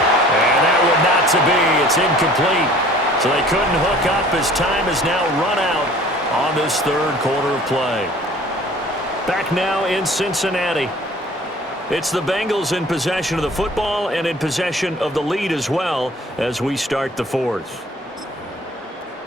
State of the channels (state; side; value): normal; both; correlation 0.50